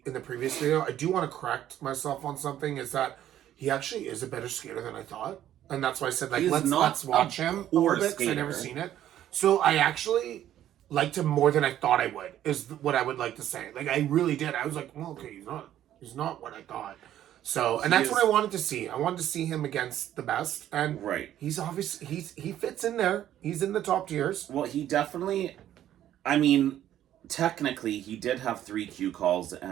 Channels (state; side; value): quieter; left; 11.8 dB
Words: in the previous video. I do want to correct myself on something, is that he actually is a better skater than I thought. And that's why I said, let's watch him a little bit, because I've never seen it. So I actually liked him more than I thought I would, is what I would like to say. I really did. I was like, well, okay, he's not what I thought. So, and that's what I wanted to see. I wanted to see him against the best. And he's obviously, he fits in there. He's in the top tiers. Well, he definitely, I mean, technically, he did have 3 Q calls